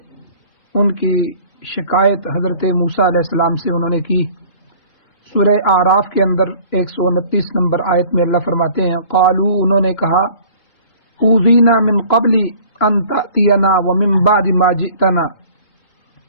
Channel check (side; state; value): right; late; 2.9 ms